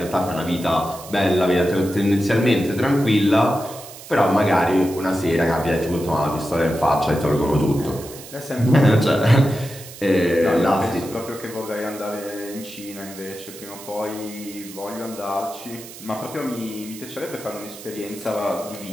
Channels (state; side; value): noise; right; hiss, 16 dB below the sound